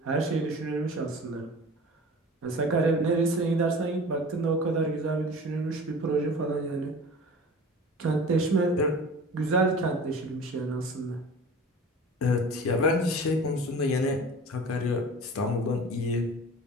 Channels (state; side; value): normal; both; correlation 0.40